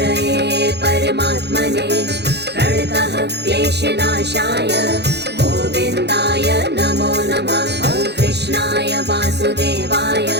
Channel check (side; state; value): left; late; 0.49 ms